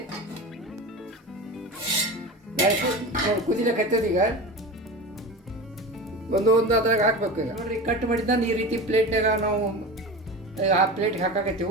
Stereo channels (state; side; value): normal; both; correlation 0.29